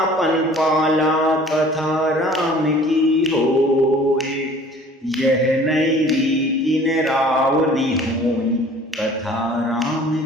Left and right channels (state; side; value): normal; both; correlation 0.50